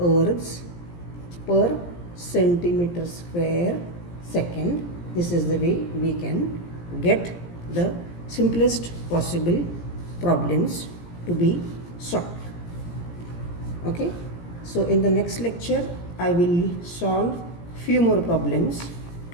per centimeter square second. This is the way we can get the simplest possible problems to be solved. Okay, so in the next lecture I will solve few more problems,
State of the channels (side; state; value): right; late; 17 ms